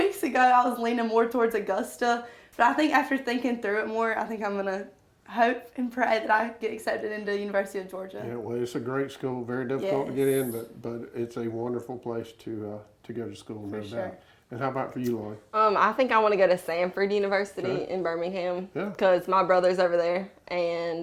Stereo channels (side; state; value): both; identical; correlation 1.00